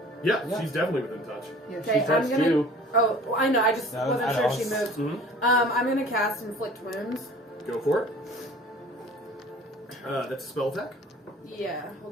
Yeah, Yeah. she's definitely within touch. Yeah, Okay, I'm touched gonna... you. Oh, well, I know, I just No, wasn't I sure know. if she moved. Mhm. I'm gonna cast Inflict Wounds. Go for it. That's a spell attack. Yeah, hold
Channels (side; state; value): both; normal; correlation 0.47